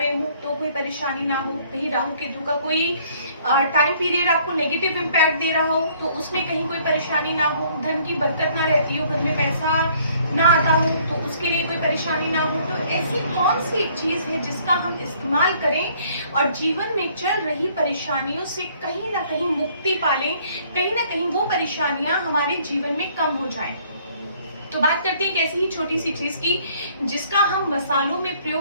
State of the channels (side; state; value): both; inverted; correlation -0.61